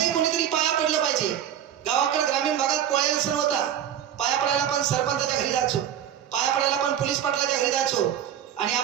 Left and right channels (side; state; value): left; quieter; 10.0 dB